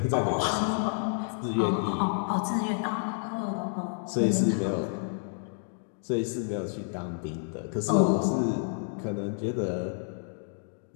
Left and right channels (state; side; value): silent; right; 58 dB below the other